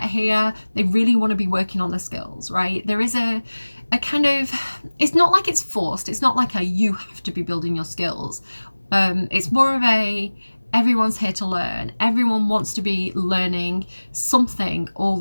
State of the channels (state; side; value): inverted; both; correlation -1.00